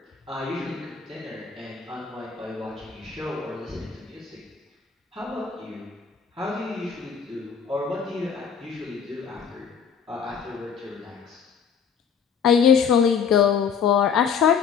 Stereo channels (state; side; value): quieter; right; 6.7 dB